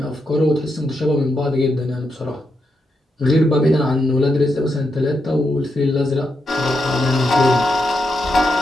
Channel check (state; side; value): normal; both; correlation 0.84